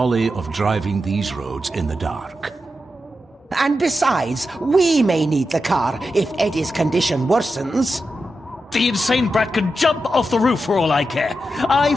of driving these roads in the dark. And besides, we may need the car if Eddie's condition worsens. The insane brat can jump off the roof for all I care. I,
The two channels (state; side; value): normal; both; correlation 0.89